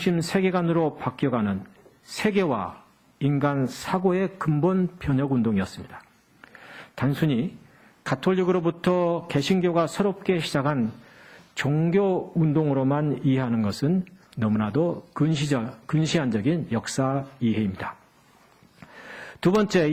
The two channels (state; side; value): identical; both; correlation 1.00